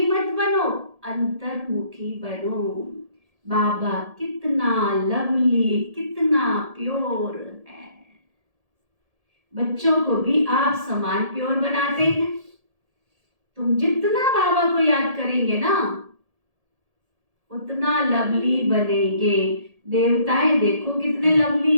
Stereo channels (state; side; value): late; left; 1.7 ms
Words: मत बनो, अंतर्मुखी बनो। बाबा कितना लवली, कितना प्योर है, बच्चों को भी आप समान प्योर बनाते हैं। तुम जितना बाबा को याद करेंगे ना उतना लवली बनेंगे। देवताएं देखो कितने